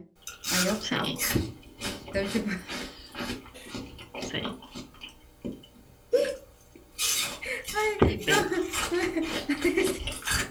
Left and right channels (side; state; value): both; identical; correlation 1.00